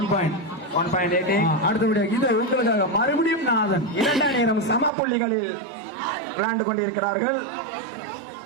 point. 1.88. அடுத்தபடியாக இது உங்களுக்காக மறுபடியும் நாதன். 2 நேரம் சம புள்ளிகளில் விளையாண்டு கொண்டிருக்கிறார்கள்.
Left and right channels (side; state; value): left; drops out; at 4.9 s